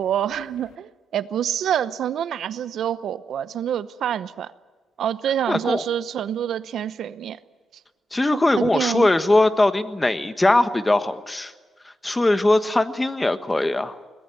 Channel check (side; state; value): both; normal; correlation 0.87